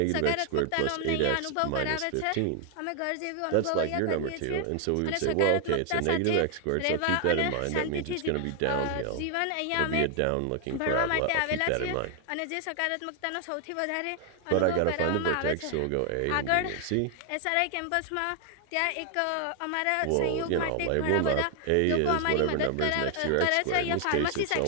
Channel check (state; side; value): different; both; correlation 0.00